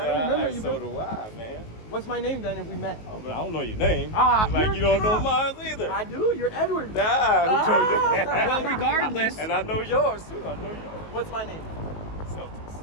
Yeah, don't remember you. so But do I, man. what's my name then if we met? Oh, but I don't know your name. Ah, It's like you're you don't know tough. mine either. I do. You're Edward. Nah, who told you? Well, regardless. And I know yours too. I know yours. What's my name? Celtics.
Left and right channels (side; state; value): right; late; 19 ms